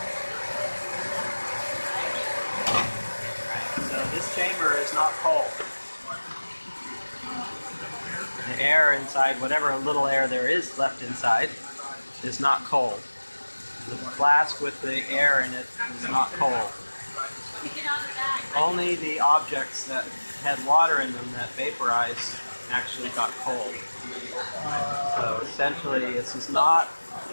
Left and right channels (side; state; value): both; inverted; correlation -1.00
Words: not cold. The air inside, whatever little air there is left inside, is not cold. The flask with the air in it is not cold. Only the objects that had water in them that vaporized actually got cold. So essentially, this is not